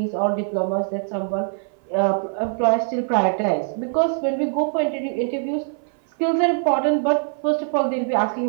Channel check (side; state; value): left; silent; 59 dB below the other